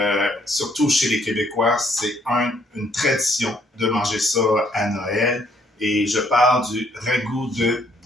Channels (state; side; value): normal; both; correlation 0.66